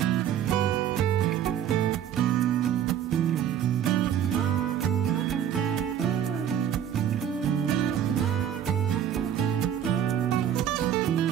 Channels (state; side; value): quieter; left; 9.8 dB